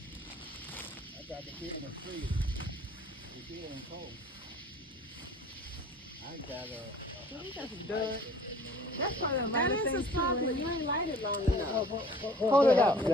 I got the beer in the freezer. The beer and cold. I got That's probably a That is a spark, but you ain't light it long enough. Hold it out.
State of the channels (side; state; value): both; normal; correlation 0.48